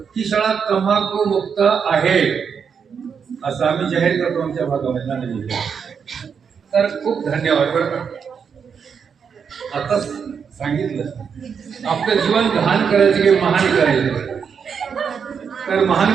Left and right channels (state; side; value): quieter; left; 6.6 dB